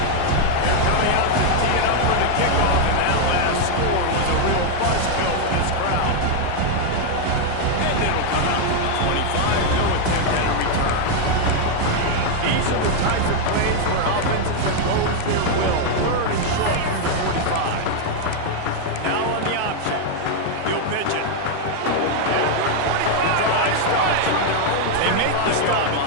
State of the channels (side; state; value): both; different; correlation 0.00